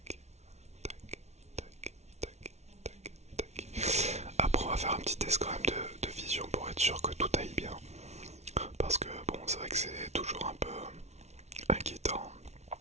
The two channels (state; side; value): late; left; 0.32 ms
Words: tac, tac, tac, tac, tac. Après, on va faire un petit test quand même de vision pour être sûr que tout aille bien. Parce que bon, c'est vrai que c'est toujours un peu inquiétant